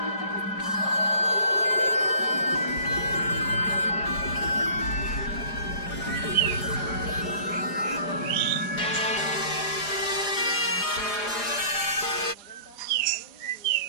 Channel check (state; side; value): late; right; 4.9 ms